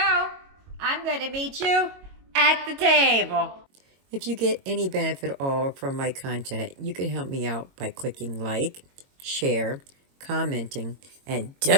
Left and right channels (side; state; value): left; late; 22 ms